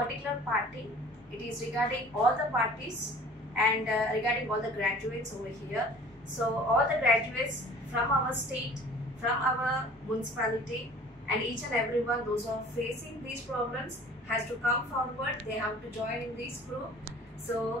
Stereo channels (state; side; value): normal; both; correlation 0.48